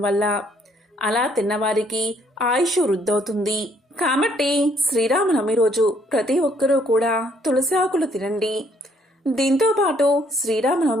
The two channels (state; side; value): normal; both; correlation 0.67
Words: వల్ల అలా తిన్నవారికి ఆయుష్ వృద్ధవుతుంది. కాబట్టి శ్రీరామనవమి రోజు ప్రతి ఒక్కరూ కూడా తులసి ఆకులు తినండి. దీంతో పాటు